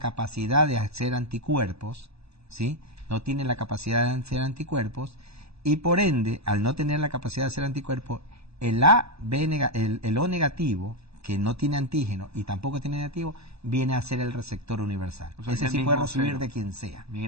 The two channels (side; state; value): left; late; 0.78 ms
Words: de hacer anticuerpos, ¿sí? No tiene la capacidad de hacer anticuerpos, y por ende, al no tener la capacidad de hacer anticuerpos, el O negativo, que no tiene antígeno y tampoco tiene negativo, viene a ser el receptor universal. O sea, ese sí puede recibir de quien sea.